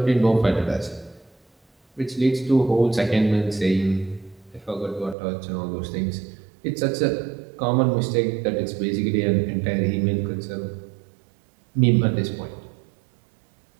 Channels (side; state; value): left; drops out; at 5.2 s